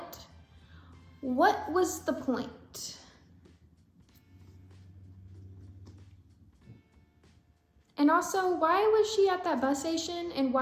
was the point? And also, why was she at that bus station and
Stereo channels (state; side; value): identical; both; correlation 1.00